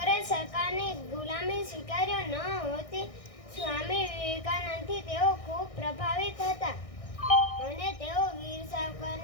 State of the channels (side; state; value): right; late; 1.6 ms